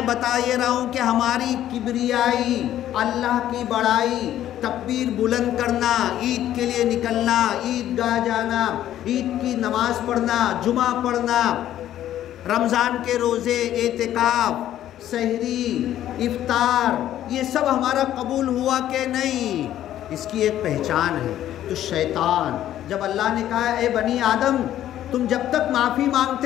بتا یہ رہا ہوں کہ ہماری کبریائی، اللہ کی بڑائی، تکبیر بلند کرنا، عید کے لیے نکلنا، عید گاہ جانا، عید کی نماز پڑھنا، جمعہ پڑھنا، رمضان کے روزے، اعتکاف، سحری، افطار، یہ سب ہمارا قبول ہوا کہ نہیں؟ اس کی ایک پہچان ہے۔ تو شیطان جب اللہ نے کہا اے بنی آدم تم جب تک معافی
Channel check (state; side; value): quieter; right; 12.1 dB